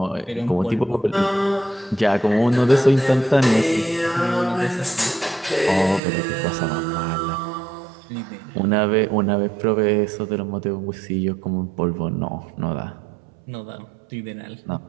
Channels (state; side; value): drops out; left; at 6.0 s